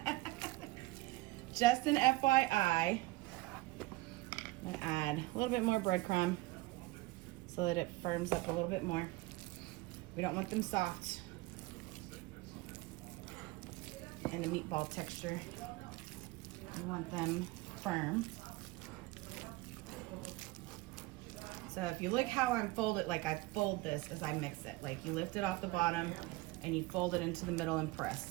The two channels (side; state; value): left; quieter; 20.4 dB